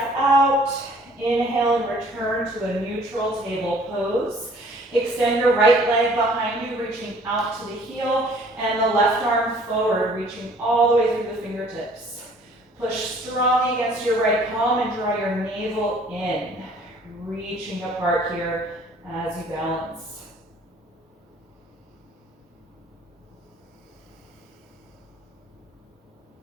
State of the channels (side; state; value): both; normal; correlation 0.56